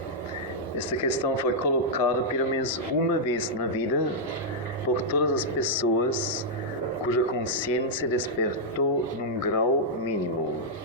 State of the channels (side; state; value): both; normal; correlation -0.07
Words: esta questão foi colocada pelo menos uma vez na vida por todas as pessoas cuja consciência despertou num grau mínimo.